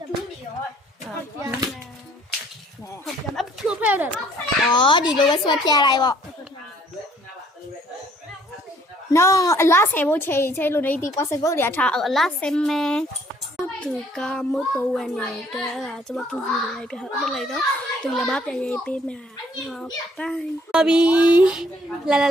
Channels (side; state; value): both; normal; correlation 0.61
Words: မယ်ဖောက်ပြမယ်အဖြိုးဖဲတယ်အော်ဒီလိုပဲဆွဲပြလိုက်ပေါ့နော်အလားဆယ်ဖို့ချိန်လို့နေဒီ possible တွေထားအလားဆယ်မယ်သူကမတော်ဝင်နေတဲ့ကျွန်မတူကြည့်လိုက်ပြဟုတ်လိုက်တော့သူလည်းမပြန်ရေးပေးမှာဟုတ်ပိုင်းပါပြီလာ